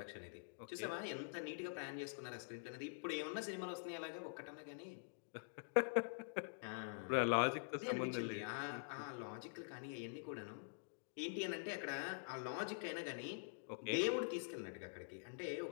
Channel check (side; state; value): right; silent; digital silence